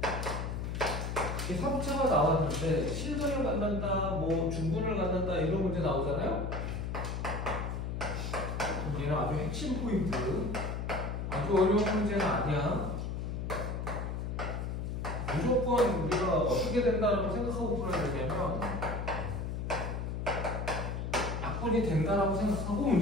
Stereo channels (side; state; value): left; noise; hum, 3 dB below the sound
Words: 3차가 나왔는데 실근을 갖는다, 뭐 중근을 갖는다 이런 문제 나오잖아요. 얘는 아주 핵심 포인트. 아주 어려운 문제는 아니야. 무조건 우리가 어떻게 된다라고 생각하고 풀어야 되냐면 약분이 된다라고 생각하고